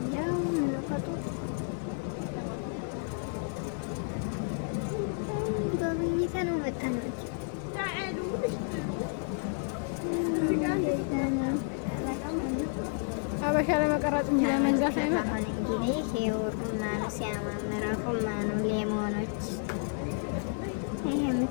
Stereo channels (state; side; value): silent; right; 57 dB below the other